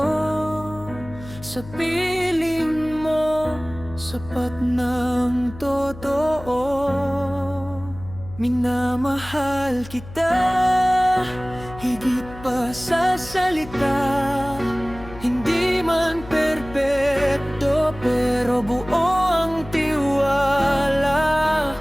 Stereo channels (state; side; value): noise; left; hum, 15 dB below the sound